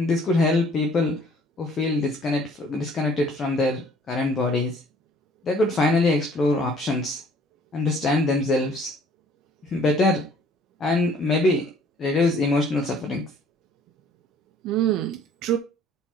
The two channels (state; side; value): normal; both; correlation 0.56